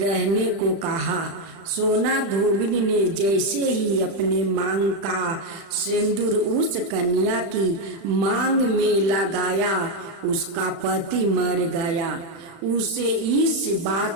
को कहा। सोना धोबिन ने जैसे ही अपने मांग का सिंदूर उस कन्या की मांग में लगाया, उसका पति मर गया। उसे इस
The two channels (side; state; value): left; late; 36 ms